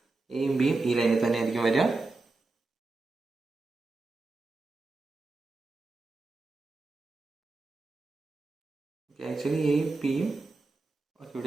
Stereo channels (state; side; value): quieter; left; 3.5 dB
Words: എയും ബിയും ഈ ലൈനിൽ തന്നെ ആയിരിക്കും വരിക. ആക്ച്വലി എയും പിയും